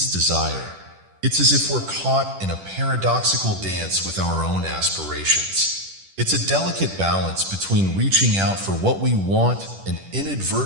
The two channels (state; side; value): late; left; 10 ms